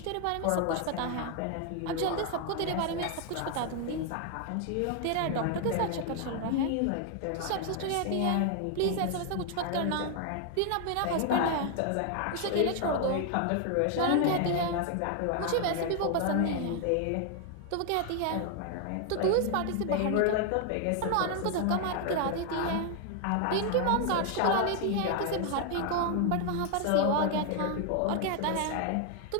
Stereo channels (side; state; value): both; different; correlation 0.00